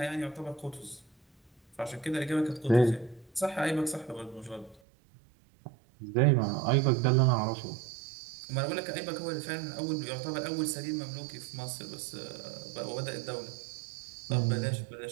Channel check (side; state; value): left; drops out; at 4.8 s